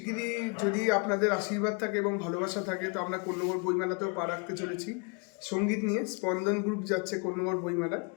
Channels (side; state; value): right; quieter; 33.2 dB